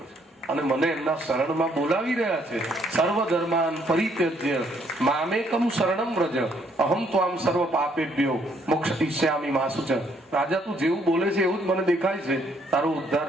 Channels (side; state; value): both; normal; correlation 0.68